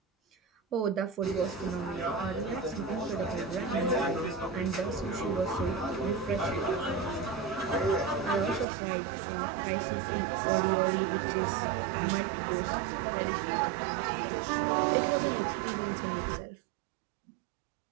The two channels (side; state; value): left; drops out; at 8.7 s